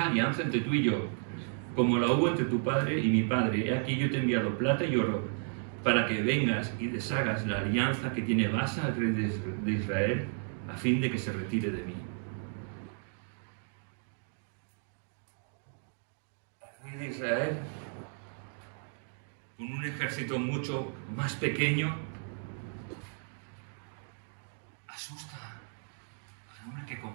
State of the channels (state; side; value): silent; left; 56 dB below the other